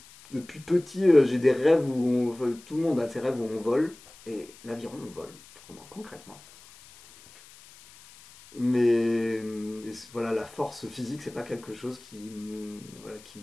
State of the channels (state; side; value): noise; left; hiss, 22 dB below the sound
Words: depuis petit, j'ai des rêves enfin, tout le monde a ses rêves où on vole, et l'aviron, on vole, vraiment, concrètement. Mais voilà, la force physique, c'est pas quelque chose voilà,